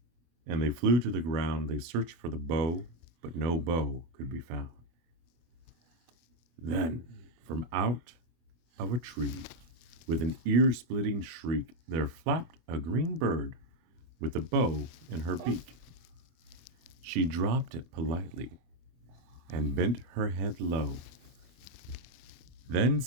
and they flew to the ground. They searched for the bow, but no bow could be found. Then, from out of a tree, with an ear-splitting shriek, there flapped a green bird with a bow in her beak. She dropped it politely and bent her head low, then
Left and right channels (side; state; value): left; late; 24 ms